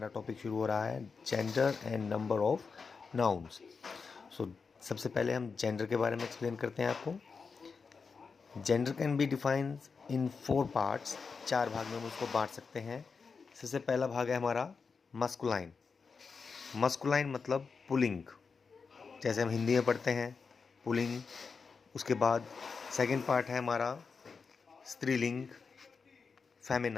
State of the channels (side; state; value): right; quieter; 5.1 dB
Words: टॉपिक शुरू हो रहा है gender and number of nouns. So सबसे पहले हम जेंडर के बारे में एक्सप्लेन करते हैं आपको. Gender can be defined in 4 parts. 4 भाग में हम उसको बांट सकते हैं. सबसे पहला भाग है हमारा मस्कुलाइन. मस्कुलाइन मतलब पुलिंग, जैसे हम हिंदी में पढ़ते हैं पुलिंग. उसके बाद सेकंड पार्ट है हमारा स्त्रीलिंग,